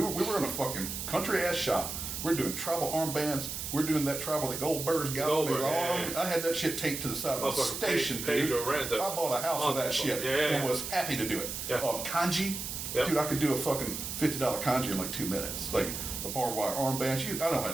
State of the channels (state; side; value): noise; right; hiss, 5 dB below the sound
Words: were in a fucking country-ass shop. We're doing tribal armbands. We're doing that tribal that Goldberg's got on his arm. I had that shit taped to the side of the station, dude. I bought a house with that shit and was happy to do it. Kanji. Dude, I could do a fucking $50 kanji in like 2 minutes. Like, a barbed wire armband. I don't